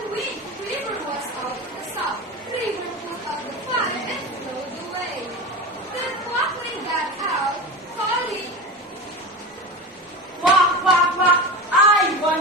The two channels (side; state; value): both; normal; correlation 0.26